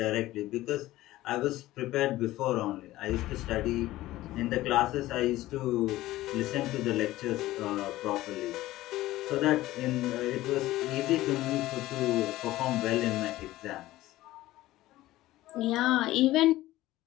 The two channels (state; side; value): quieter; right; 16.4 dB